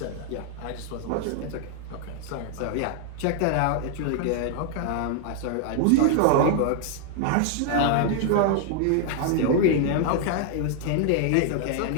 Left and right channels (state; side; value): different; both; correlation 0.00